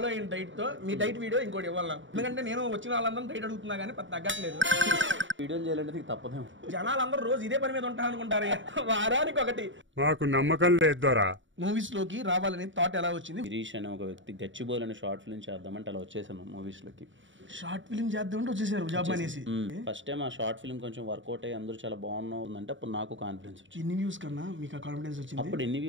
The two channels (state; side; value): late; left; 0.55 ms